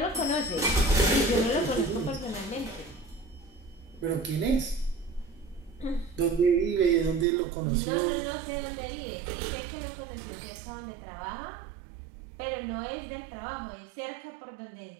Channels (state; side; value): drops out; left; at 7.2 s